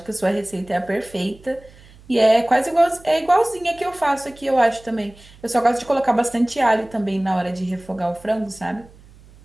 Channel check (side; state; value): right; noise; hum, 24 dB below the sound